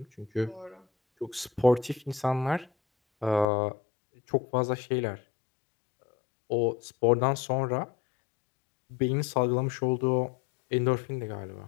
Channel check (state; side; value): drops out; right; at 3.5 s